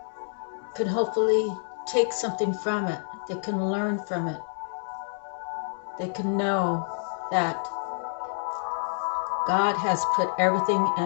can hopefully take something from it. They can learn from it. They can know that God has put everything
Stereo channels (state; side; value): silent; right; 60 dB below the other